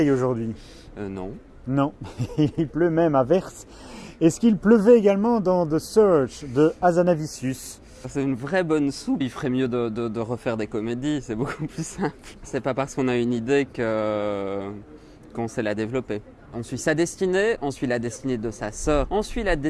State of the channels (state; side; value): identical; both; correlation 1.00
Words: aujourd'hui. Non. Non, il pleut même à verse. Est-ce qu'il pleuvait également dans The Search de Hazanavicius? C'est une vraie bonne soupe. Il ferait mieux de refaire des comédies, c'est beaucoup plus simple. C'est pas parce qu'on a une idée qu'on sait la développer. On suit sa destinée, on suit la destinée de sa sœur, on suit la